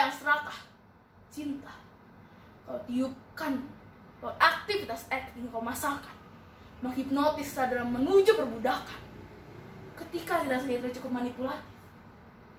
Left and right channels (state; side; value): identical; both; correlation 1.00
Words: serakah. Cinta kau tiupkan lewat aktivitas acting kau masalkan, menghipnotis dalam menuju perbudakan. Ketika tidak sedikit cukup manipulatif,